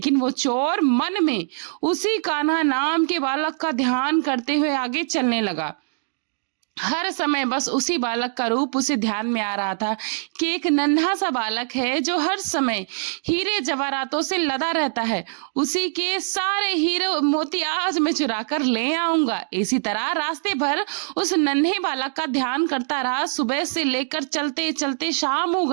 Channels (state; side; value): silent; left; digital silence